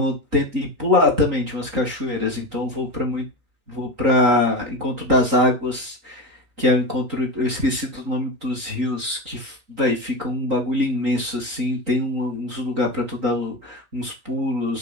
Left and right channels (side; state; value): left; late; 3.9 ms